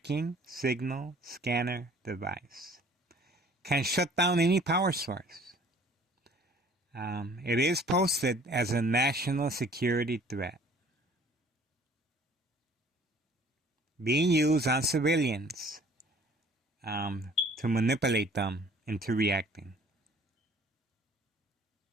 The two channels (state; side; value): normal; both; correlation 0.53